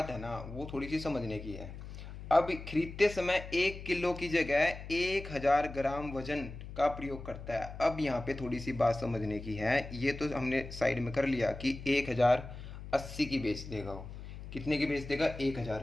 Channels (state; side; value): noise; left; hum, 11 dB below the sound